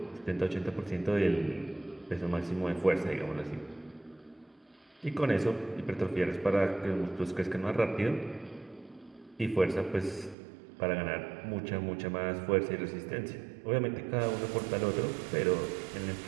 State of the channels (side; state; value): left; drops out; at 10.4 s